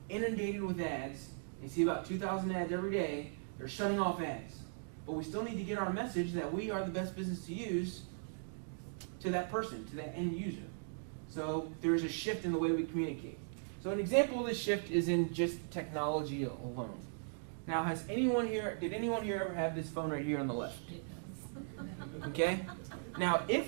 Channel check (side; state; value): left; silent; digital silence